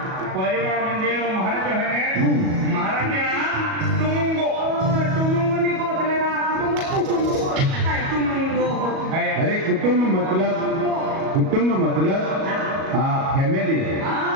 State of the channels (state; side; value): late; left; 37 ms